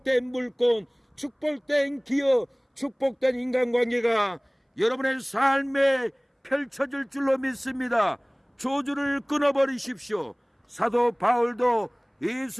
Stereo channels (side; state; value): both; identical; correlation 1.00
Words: 물건, 축복된 기업, 축복된 인간관계가 여러분의 삶에 펼쳐질 줄로 믿습니다. 저주를 끊어버리십시오. 사도 바울도